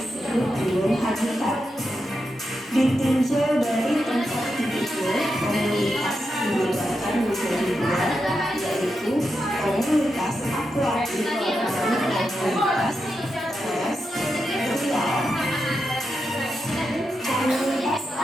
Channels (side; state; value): both; normal; correlation 0.87